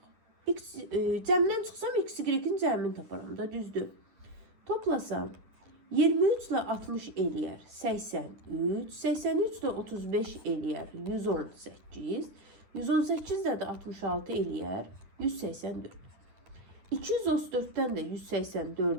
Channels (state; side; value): late; left; 9.8 ms